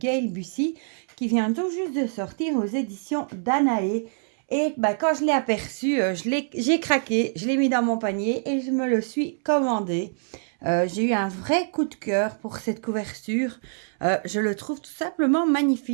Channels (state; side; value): silent; left; 62 dB below the other